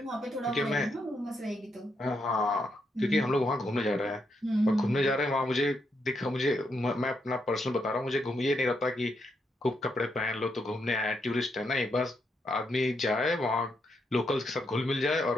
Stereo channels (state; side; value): normal; both; correlation 0.80